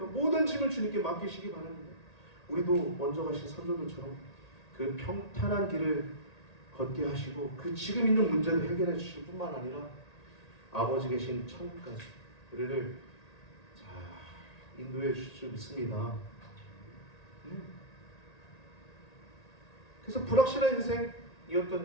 모든 짐을 주님께 맡기시기 바랍니다. 우리도 먼저 가신 선조들처럼 그 평탄한 길을 걷게 하시고 그 지금 있는 문제도 해결해 주실 뿐만 아니라 아버지 계신 천국까지 우리를 인도해 주실 줄 믿습니다. 그래서 불확실한 인생이었던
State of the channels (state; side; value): late; right; 1.8 ms